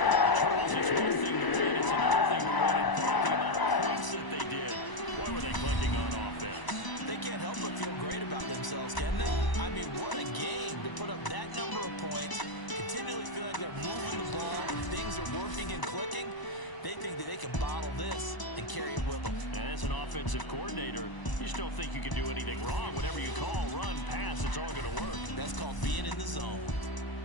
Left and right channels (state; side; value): late; right; 1.0 ms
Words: Charles, it's one thing to win. It's another thing to win in part. The amount of points that they did. Boy, were they clicking on offense. They can't help but feel great about themselves, can they? I mean, what a game to put up that number of points, continually feel like they're moving the ball, and things are working and clicking. They think that they can bottle this and carry it with them. And as an offensive coordinator, you just don't think you can do anything wrong. Whatever you call, run, pass, it's all going to work. That's called being in the zone.